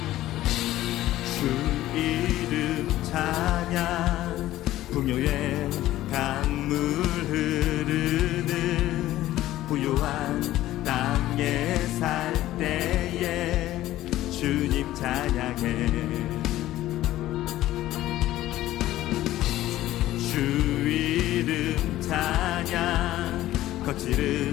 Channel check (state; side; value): quieter; right; 14.8 dB